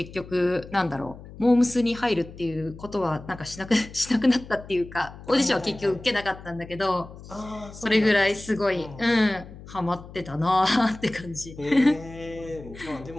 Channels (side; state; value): left; noise; hum, 16 dB below the sound